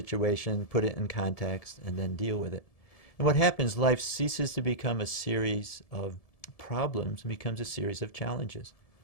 put it in context, and then deal with it. And what happens, life ceases to become a series of problems and becomes a series of challenges.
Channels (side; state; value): right; late; 1.7 ms